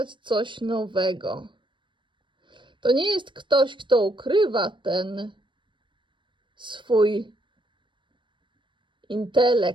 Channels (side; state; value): left; late; 0.24 ms